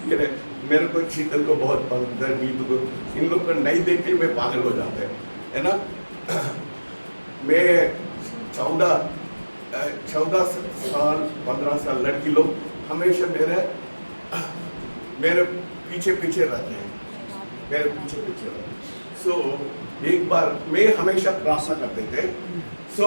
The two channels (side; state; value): both; inverted; correlation -1.00